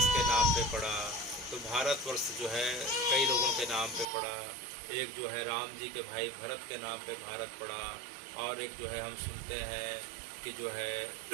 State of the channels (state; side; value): drops out; left; at 4.0 s